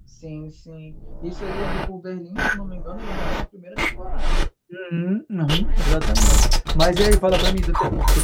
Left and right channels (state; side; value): identical; both; correlation 1.00